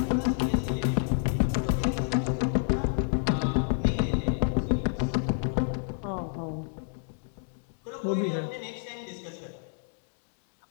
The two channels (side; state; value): right; silent; digital silence